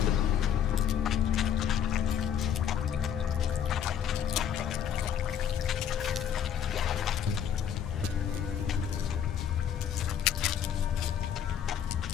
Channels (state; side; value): quieter; right; 8.9 dB